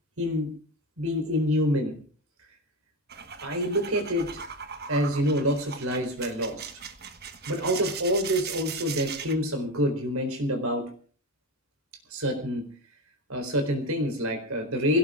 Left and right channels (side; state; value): both; normal; correlation 0.20